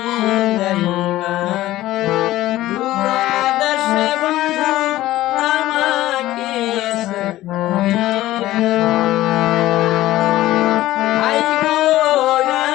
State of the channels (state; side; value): quieter; right; 15.6 dB